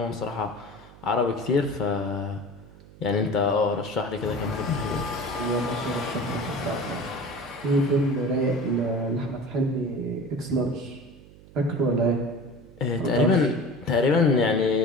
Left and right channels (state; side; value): noise; right; hum, 22 dB below the sound